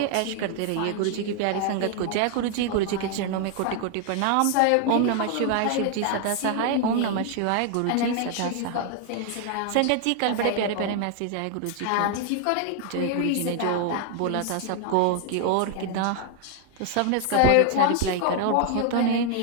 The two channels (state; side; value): different; both; correlation 0.00